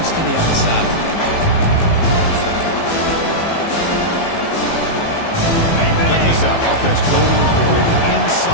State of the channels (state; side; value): late; right; 18 ms